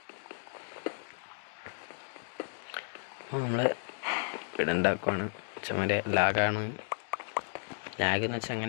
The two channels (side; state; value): right; silent; digital silence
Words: അപ്പോൾ നമ്മൾ വീടുണ്ടാക്കുവാണ്. ചുമരെ ലാഗാണ്. ലാഗ് എന്ന് വെച്ചാൽ